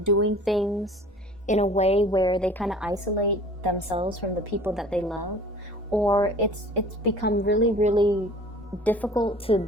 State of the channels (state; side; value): normal; both; correlation 0.46